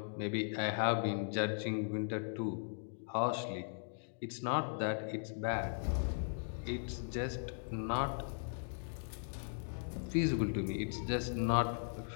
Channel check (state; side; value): silent; right; digital silence